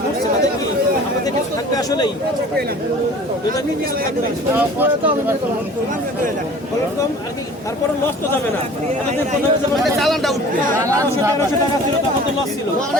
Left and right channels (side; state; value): both; normal; correlation 0.45